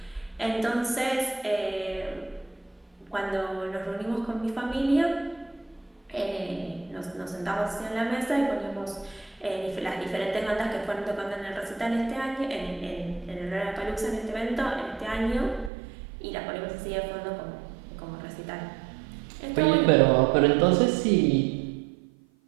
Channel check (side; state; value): left; drops out; at 15.7 s